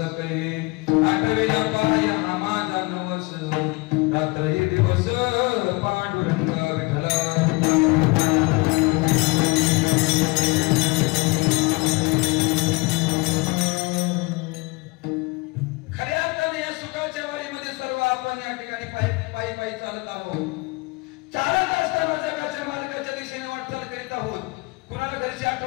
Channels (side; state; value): right; quieter; 25.9 dB